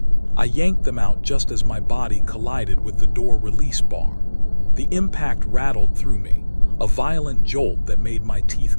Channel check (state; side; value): inverted; both; correlation -1.00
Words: I yanked them out just as my body collided with the door release bar. The impact rattled through me, a violent jolt that made my teeth